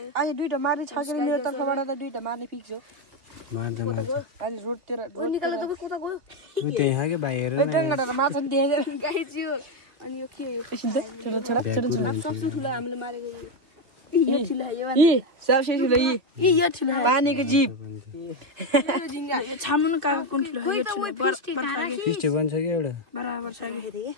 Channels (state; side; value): late; left; 2.5 ms